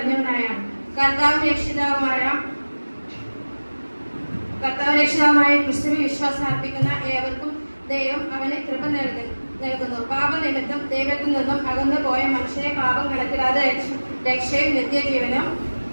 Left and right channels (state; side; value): inverted; both; correlation -1.00